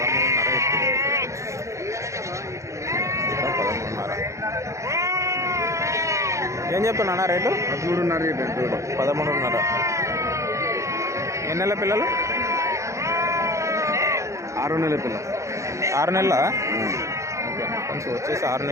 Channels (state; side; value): late; left; 0.15 ms